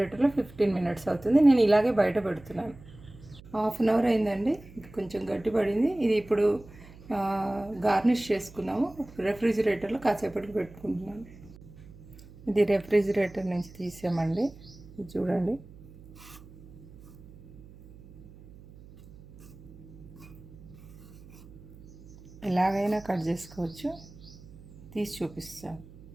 15 మినిట్స్ అవుతుంది. నేను ఇలాగే బయట పెడుతున్నాను. హాఫ్ అన్ అవర్ అయిందండి, కొంచెం గట్టి పడింది. ఇది ఇప్పుడు గార్నిష్ చేసుకున్నాము. రెఫ్రిజిరేటర్లో కాసేపటికి పెట్టుకుంటున్నాను. ఇది రెఫ్రిజిరేటర్ నుంచి తీసామండి, ఇది చూడండి. ఎలాగైనా కట్ చేసుకోవచ్చు, తీసి చూపిస్తాను.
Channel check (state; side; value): noise; right; hum, 20 dB below the sound